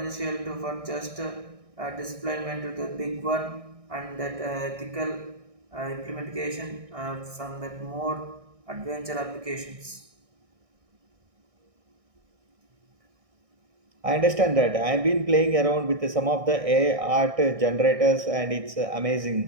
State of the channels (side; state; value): left; late; 1.6 ms